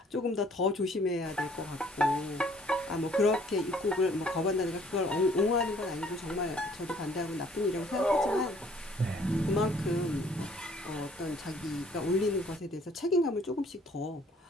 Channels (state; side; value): normal; both; correlation 0.59